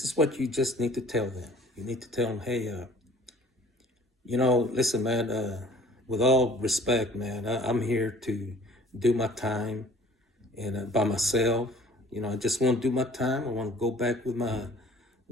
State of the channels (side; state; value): both; normal; correlation 0.51